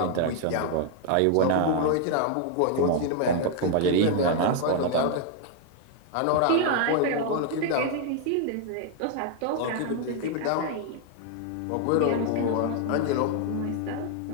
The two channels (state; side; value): different; both; correlation 0.00